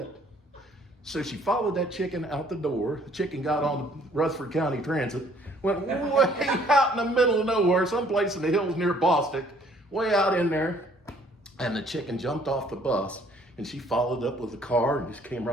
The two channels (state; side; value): normal; both; correlation 0.60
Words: So she followed that chicken out the door. The chicken got on the Rutherford County Transit, went way out in the middle of nowhere, someplace in the hills near Bostic, way out in there. And the chicken jumped off the bus, and she followed up with the car and just came